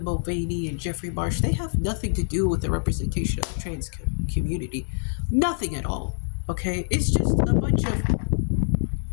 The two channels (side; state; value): right; silent; digital silence